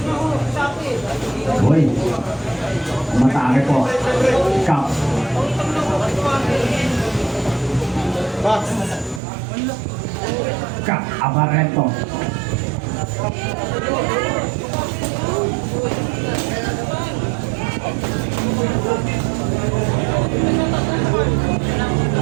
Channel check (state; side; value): drops out; left; at 9.2 s